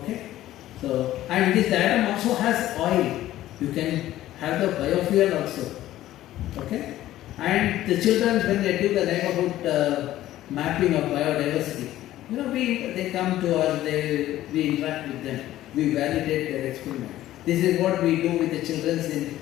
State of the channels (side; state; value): right; quieter; 14.2 dB